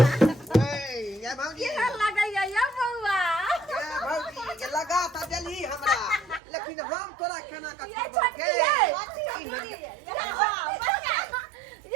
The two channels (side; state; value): left; drops out; at 6.4 s